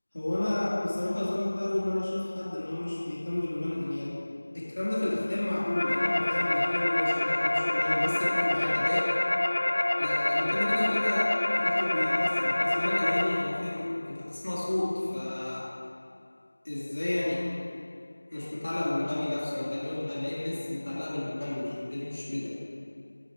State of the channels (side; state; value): both; inverted; correlation -1.00